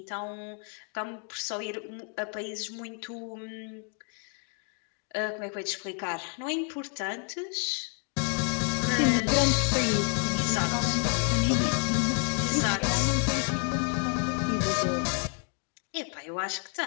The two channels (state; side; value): quieter; right; 39.2 dB